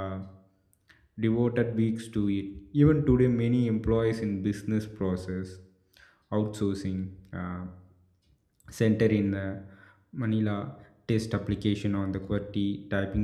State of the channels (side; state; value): both; identical; correlation 1.00